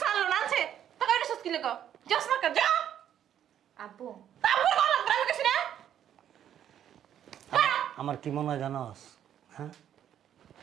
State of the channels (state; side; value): quieter; left; 10.1 dB